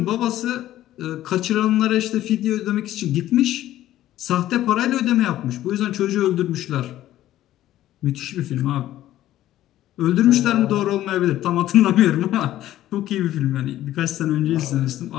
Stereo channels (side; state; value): right; quieter; 13.7 dB